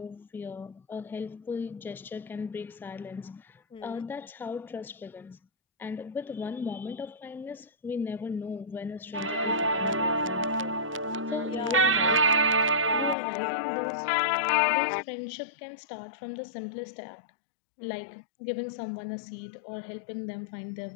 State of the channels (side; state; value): right; drops out; at 13.2 s